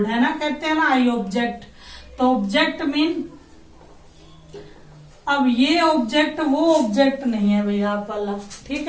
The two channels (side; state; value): both; identical; correlation 1.00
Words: है ना, कहते हैं ना आई ऑब्जेक्ट। तो ऑब्जेक्ट मीन, अब ये ऑब्जेक्ट वो ऑब्जेक्ट नहीं है भैया आप वाला, ठीक